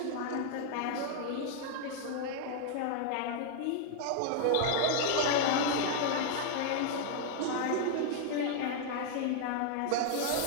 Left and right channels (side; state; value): both; different; correlation 0.00